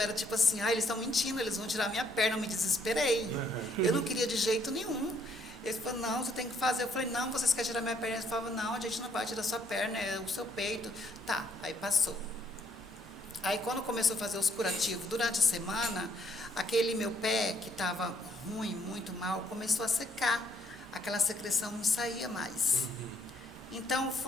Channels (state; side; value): normal; both; correlation 0.68